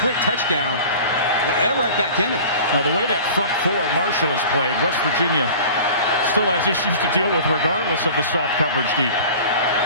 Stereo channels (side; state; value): both; inverted; correlation -0.40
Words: touchdown, they're right back in it. Now, the way that front 4 Marshall has played, West Virginia still has issues to deal with regardless of the soft coverage deep.